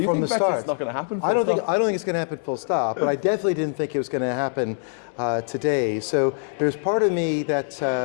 think Brexit's not going to happen full stop? I don't think it's going to happen full stop, but I definitely didn't think it was going to happen today. So there's part of me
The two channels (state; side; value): silent; right; digital silence